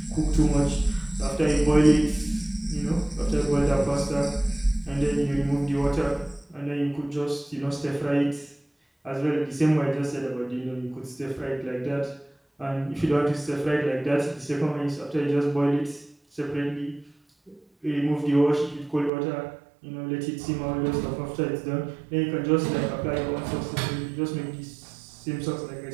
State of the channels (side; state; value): left; drops out; at 19.1 s